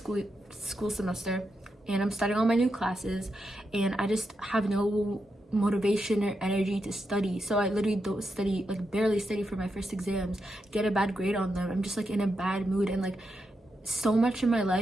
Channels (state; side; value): normal; both; correlation 0.85